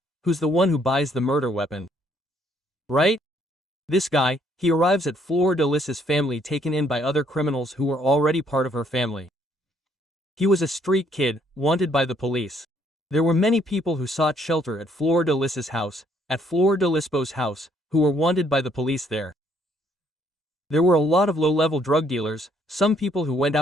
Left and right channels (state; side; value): normal; both; correlation 0.67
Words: who's the one who buys the murder weapon. Right? This guy, he arrives at Fleur de Lis's family taken in by other criminals who were already part of her family. He was a street kid, wanted by the police. There were many people who sought shelter at Fleur de Lis's house, at Fleur de Lisbo's house, who were wanted by the police there. There were a lot of low-level drug dealers, some people who went